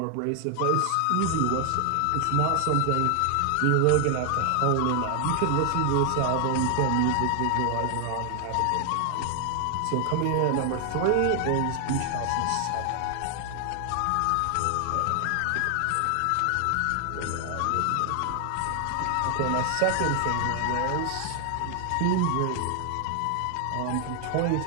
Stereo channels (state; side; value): different; both; correlation 0.00